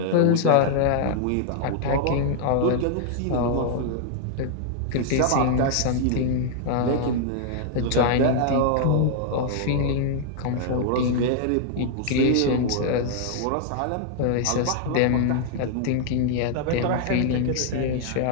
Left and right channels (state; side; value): different; both; correlation 0.00